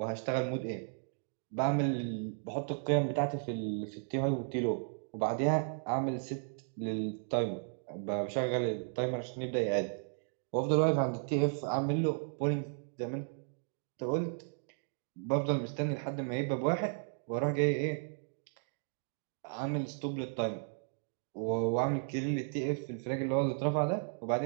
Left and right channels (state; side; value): silent; left; digital silence